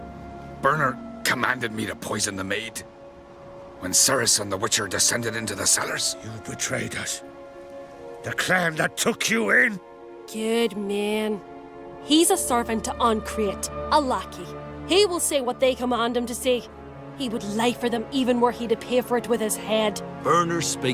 Bernard commanded me to poison the maid. When Ceres and the Witcher descended into the cellars. You betrayed us. The clan that took you in. Good man. He's a servant to Uncreate, a lackey. He will say what they command him to say. He would lie for them even were he to pay for it with his head. Bernard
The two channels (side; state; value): both; identical; correlation 1.00